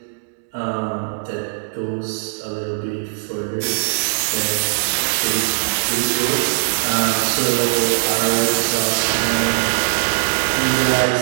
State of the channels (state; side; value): silent; left; digital silence